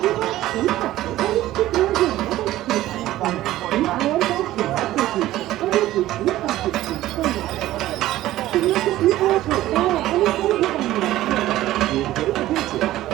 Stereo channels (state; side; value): quieter; left; 15.0 dB